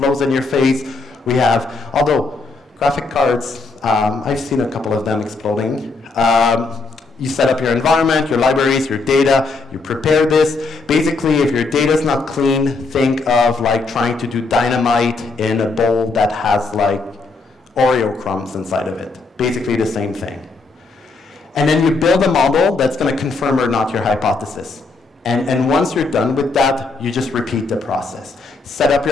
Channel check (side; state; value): right; quieter; 3.8 dB